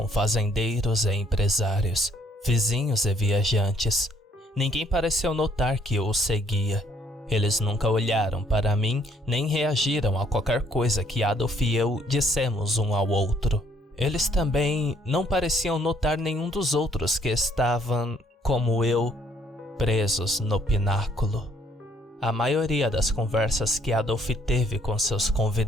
fazendeiros e empresários, vizinhos e viajantes. Ninguém pareceu notar que eu o seguia. Eles nunca olharam para mim, nem reagiram a qualquer coisa que Adolf e eu dissemos um ao outro. Eles também não pareciam notar nenhum dos outros que estavam, como eu, presos no pináculo. A maioria das conversas que Adolf teve com seus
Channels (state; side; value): normal; both; correlation 0.65